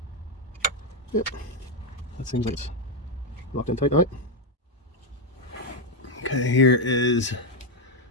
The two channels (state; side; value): normal; both; correlation 0.04